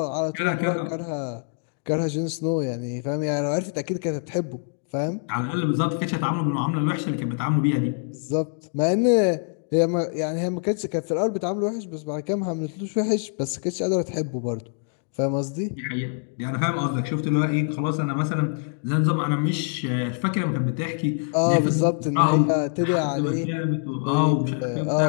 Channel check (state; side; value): silent; right; 60 dB below the other